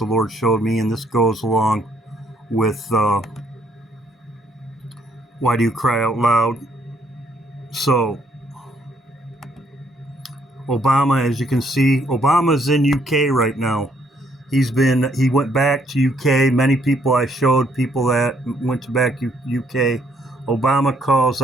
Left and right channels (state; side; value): normal; both; correlation 0.69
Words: Lord showed me, and this goes along with why do you cry out loud? So Obama, as you can see, Obama's in UK right now. He went back to UK. Many people I showed, people that went back to UK. Obama calls